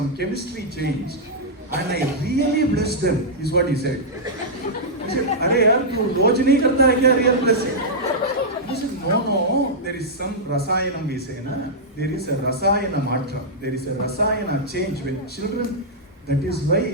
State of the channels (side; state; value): both; normal; correlation -0.09